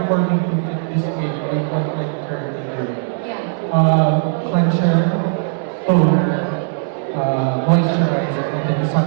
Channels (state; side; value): silent; left; digital silence